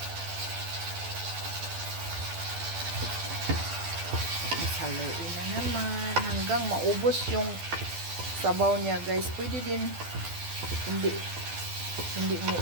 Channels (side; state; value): left; late; 12 ms